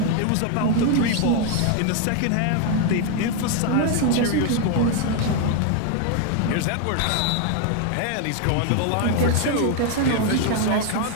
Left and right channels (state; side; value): different; both; correlation 0.00